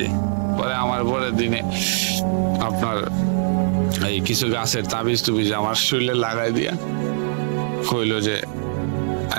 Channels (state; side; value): silent; left; digital silence